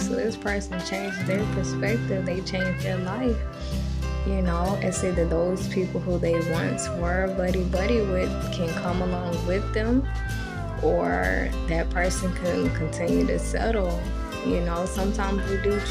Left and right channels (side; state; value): both; identical; correlation 1.00